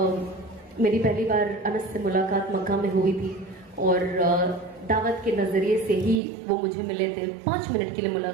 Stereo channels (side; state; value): left; drops out; at 6.2 s